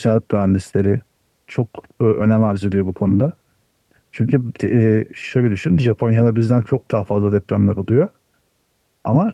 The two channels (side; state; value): both; identical; correlation 1.00